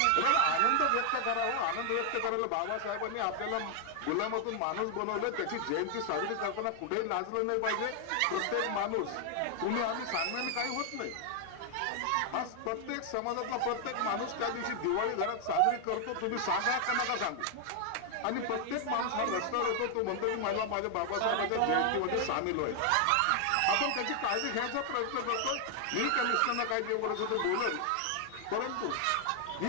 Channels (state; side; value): different; both; correlation 0.00